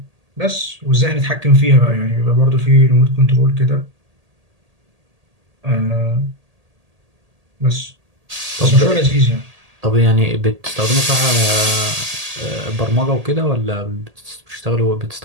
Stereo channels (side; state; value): left; late; 1.8 ms